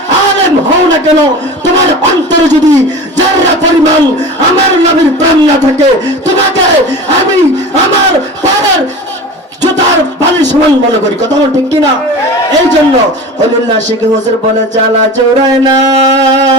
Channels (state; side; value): normal; both; correlation 0.34